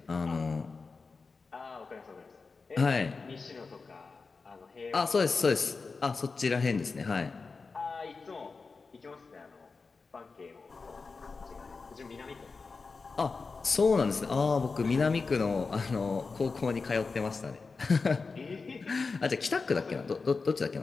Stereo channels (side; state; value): right; quieter; 4.4 dB